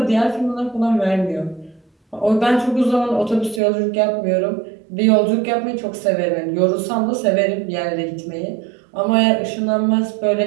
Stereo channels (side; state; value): left; drops out; at 3.6 s